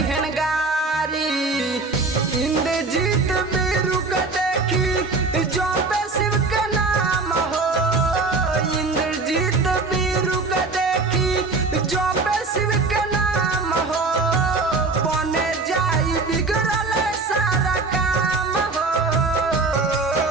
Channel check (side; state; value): left; quieter; 3.8 dB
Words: गारी। इंद्रजीत बीरू के देखी जो पे शिव के नाम हो, इंद्रजीत बीरू के देखी जो पे शिव के नाम हो, बने जाई बिगड़ल सारा काम हो